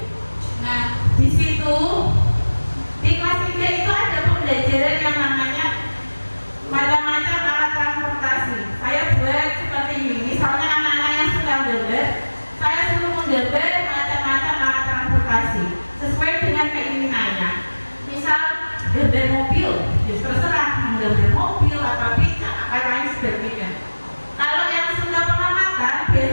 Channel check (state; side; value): inverted; both; correlation -1.00